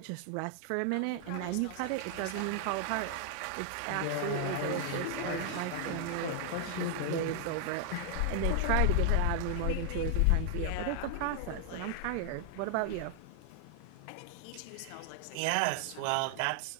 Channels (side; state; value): both; different; correlation 0.00